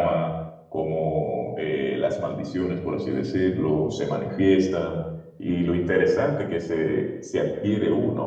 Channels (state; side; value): identical; both; correlation 1.00